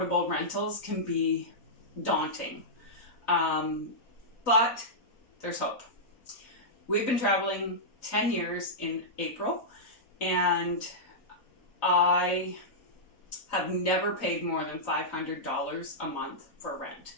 rentals can be daunting. But there's hope. We've been traveling 10 years in April, and I have never paid more than $500 a month for rent.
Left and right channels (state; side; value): late; right; 3.9 ms